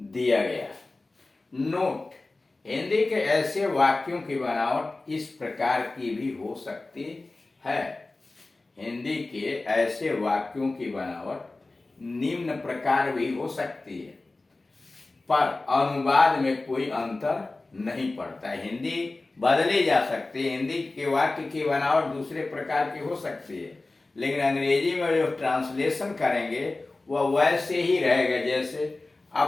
दिया गया। नोट, हिंदी के ऐसे वाक्यों की बनावट इस प्रकार की भी हो सकती है। हिंदी के ऐसे वाक्यों की बनावट निम्न प्रकार भी हो सकती है, पर अनुवाद में कोई अंतर नहीं पड़ता है। हिंदी बदली जा सकती है, हिंदी के वाक्य की बनावट दूसरे प्रकार की हो सकती है, लेकिन अंग्रेजी में जो ट्रांसलेशन करेंगे वह वैसे ही रहेगा जैसे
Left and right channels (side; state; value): right; quieter; 3.2 dB